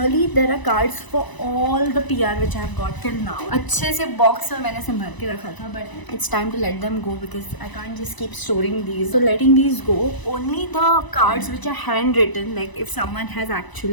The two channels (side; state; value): right; late; 1.0 ms